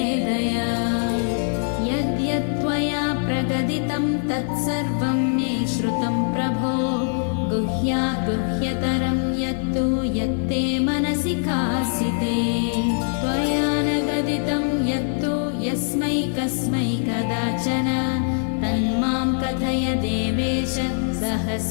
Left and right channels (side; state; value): right; silent; digital silence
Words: दया यद्यत्त्वया प्रगदितं तत्सर्वं मे श्रुतं प्रभो गुह्यात् गुह्यतरं यत्तु यत्ते मनसि कासिते त्वया न गदितं यत्तु यस्मै कस्मै कदाचन तन्मां कथय देवेश